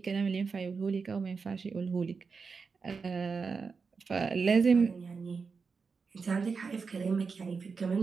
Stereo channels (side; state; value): left; quieter; 5.1 dB